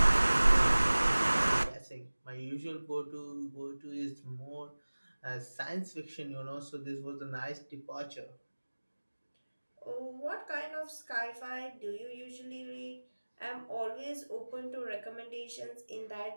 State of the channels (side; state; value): both; inverted; correlation -1.00